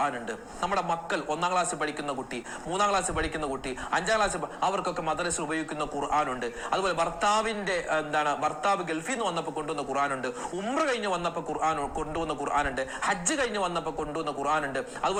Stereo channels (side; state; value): both; identical; correlation 1.00